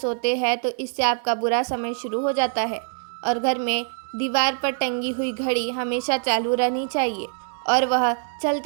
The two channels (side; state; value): left; silent; digital silence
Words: हैं तो इससे आपका बुरा समय शुरू हो जाता है और घर में दीवार पर टंगी हुई घड़ी हमेशा चालू रहनी चाहिए और वह